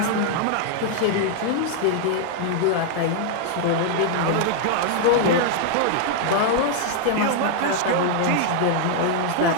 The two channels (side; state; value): both; different; correlation 0.00